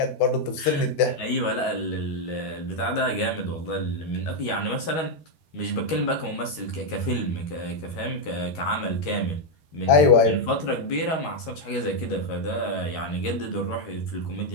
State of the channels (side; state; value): right; late; 13 ms